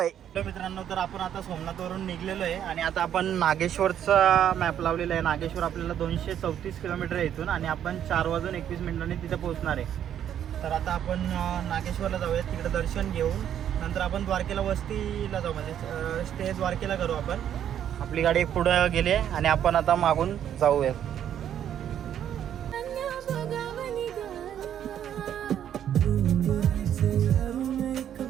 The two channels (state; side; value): quieter; left; 9.9 dB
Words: मित्रांनो, तर आपण आता सोमनाथवरून निघलेलो आहे आणि आता आपण नागेश्वरचा मॅप लावलेला आहे. नागेश्वर आपल्याला 234 किलोमीटर आहे इथून आणि आपण 4:21 तिथे पोहोचणार आहे. तर आता आपण नागेश्वरला जाऊयात, तिकडे दर्शन घेऊन नंतर आपण द्वारकेला वस्तीला जाऊ, म्हणजे स्टे द्वारकेला करू आपण. आपली गाडी पुढं गेली आणि आपण आता मागून जाऊयात.